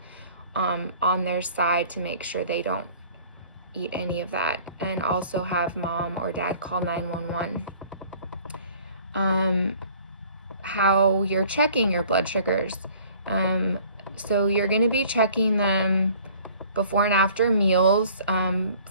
on their side to make sure they don't eat any of that, and also have mom or dad call 911. How you're checking your blood sugars. So you're going to be checking them before and after meals,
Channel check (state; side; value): inverted; both; correlation -0.52